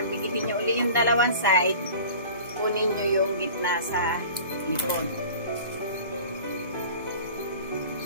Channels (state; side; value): inverted; both; correlation -0.41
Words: dikipin nyo uli yung dalawang side, kunin nyo yung gitna sa likod.